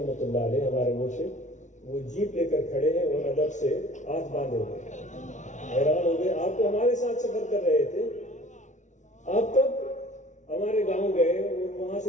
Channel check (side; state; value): right; late; 0.36 ms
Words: اللہ علیہ ہمارے مرشد وہ جیپ لے کر کھڑے ہیں اور ادب سے ہاتھ باندھے ہوئے. حیران ہو گئے, آپ تو ہمارے ساتھ سفر کر رہے تھے, آپ تب ہمارے گاؤں گئے اور وہاں